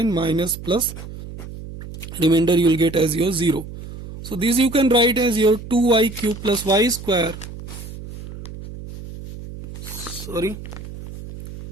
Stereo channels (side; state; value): right; noise; hum, 12 dB below the sound